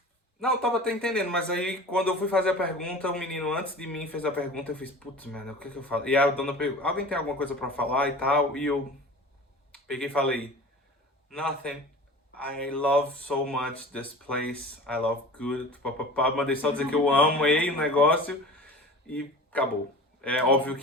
Não, eu tava até entendendo, mas aí quando eu fui fazer a pergunta, o menino antes de mim fez a pergunta, eu fiz, putz, mano, o que eu falo? E a dona perguntou, alguém tem alguma coisa para falar e tal? E eu peguei e falei, nothing. I love so much this place. I love good. Papapá. Mandei só dizer que eu amei o negócio e acabou. É óbvio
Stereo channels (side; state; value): both; normal; correlation 0.39